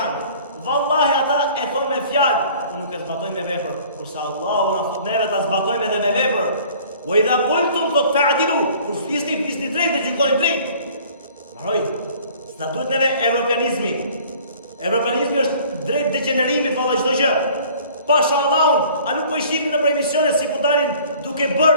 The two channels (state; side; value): inverted; both; correlation -0.51